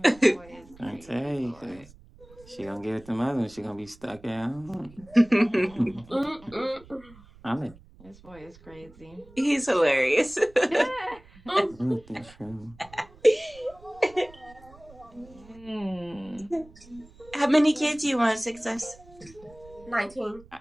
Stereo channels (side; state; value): right; noise; rumble, 23 dB below the sound